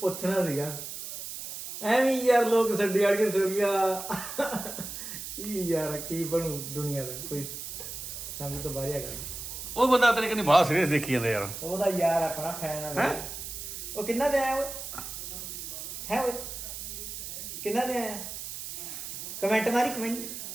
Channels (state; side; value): noise; right; hiss, 8 dB below the sound